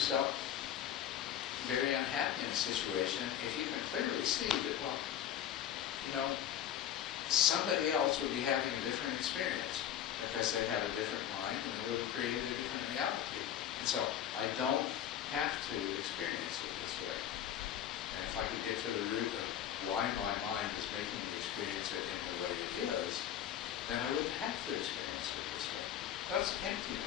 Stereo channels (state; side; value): quieter; right; 10.4 dB